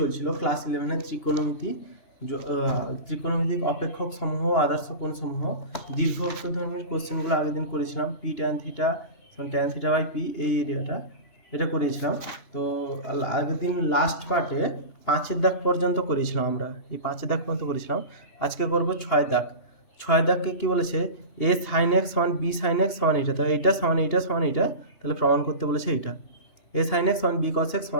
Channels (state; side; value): late; right; 2.8 ms